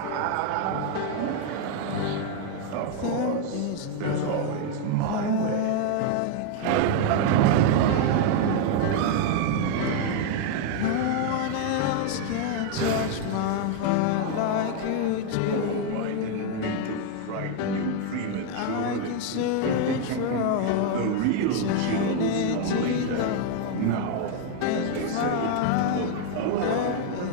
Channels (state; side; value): different; both; correlation 0.00